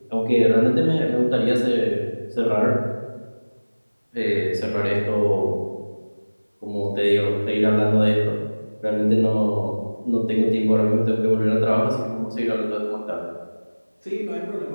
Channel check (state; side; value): inverted; both; correlation -1.00